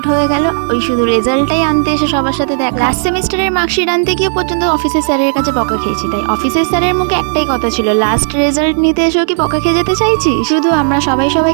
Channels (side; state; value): left; silent; digital silence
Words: হয়ে গেল। ওই শুধু রেজাল্টটাই আনতে এসে সবার সাথে দেখা। লাস্ট সেমিস্টারের মার্কশিট আনতে গিয়ে পর্যন্ত অফিসের স্যারের কাছে বকা খেয়েছি। তাই অফিসের স্যারের মুখে একটাই কথা ছিল, লাস্ট রেজাল্ট নিতে এসেও কি বকা খেয়ে যেতে চাইছি। শুধু আমরা